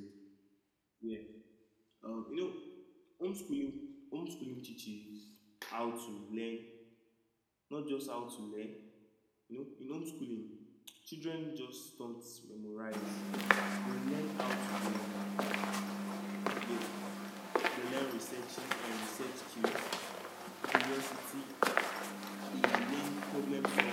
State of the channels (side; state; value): both; identical; correlation 1.00